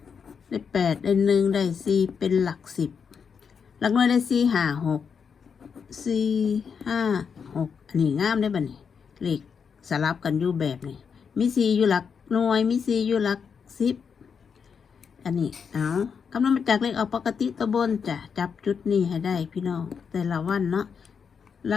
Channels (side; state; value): right; quieter; 6.4 dB